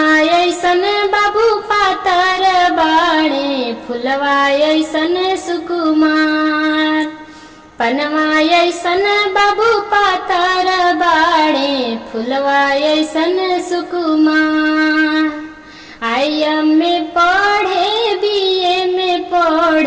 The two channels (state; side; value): identical; both; correlation 1.00